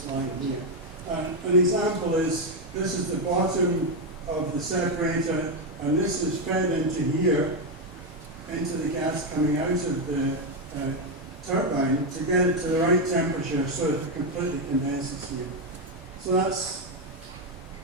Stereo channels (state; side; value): normal; both; correlation 0.05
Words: line here. An example is, this is the bottom of the separator, and this is fed into here, into the gas coming out of the turbine to get it to the right temperature so that it completely condenses here. So that's